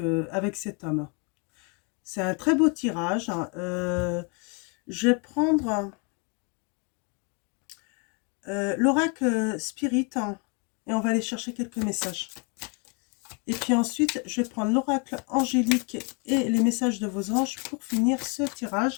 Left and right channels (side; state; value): right; quieter; 34.4 dB